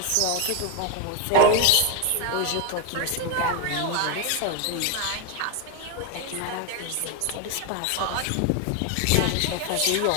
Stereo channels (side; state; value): both; different; correlation 0.01